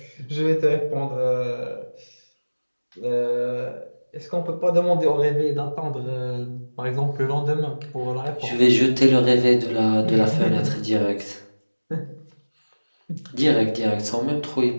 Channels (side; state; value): both; inverted; correlation -1.00